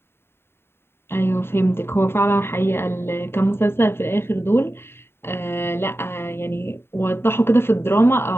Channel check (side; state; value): right; late; 0.11 ms